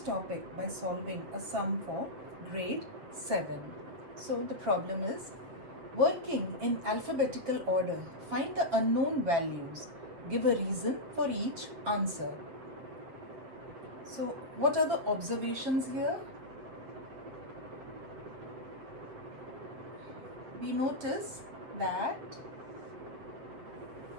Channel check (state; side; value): late; left; 8.0 ms